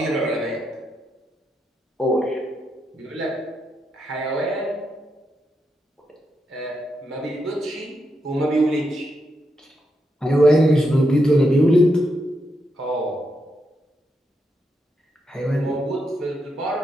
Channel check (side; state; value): both; normal; correlation 0.83